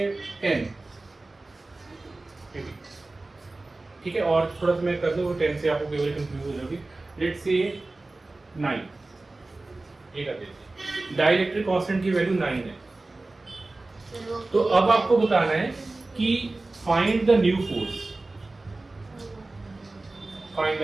10। ठीक है, और थोड़ा सा मैं कर दूं, वो 10 से आपको केवल कंफ्यूज हो जाओगे। लेट्स से 9, ये कर देते। डाइलेक्ट्रिक कांस्टेंट की वैल्यू 9 है। तो अब आपको बताना है कि find the new force, find the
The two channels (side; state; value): left; quieter; 3.1 dB